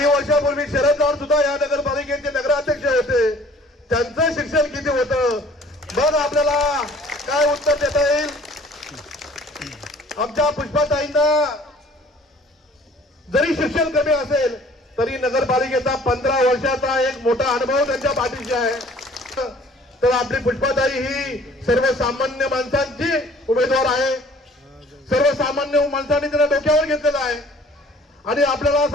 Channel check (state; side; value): normal; both; correlation 0.53